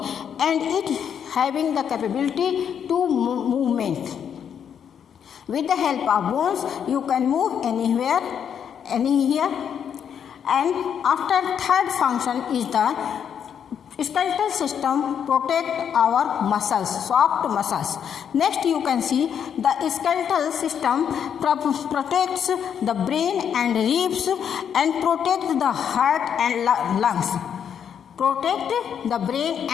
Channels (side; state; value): right; quieter; 8.2 dB